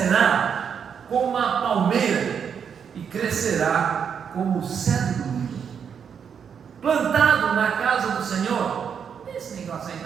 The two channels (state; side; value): quieter; left; 7.3 dB